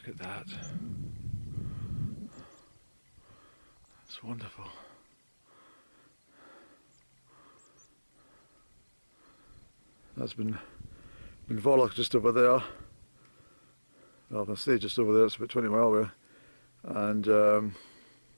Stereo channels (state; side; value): inverted; both; correlation -1.00